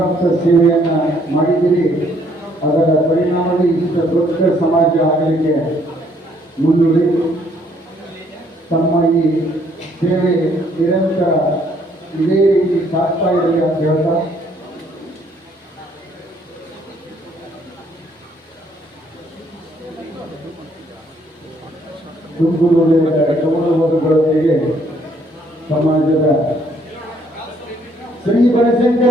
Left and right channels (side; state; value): both; normal; correlation 0.66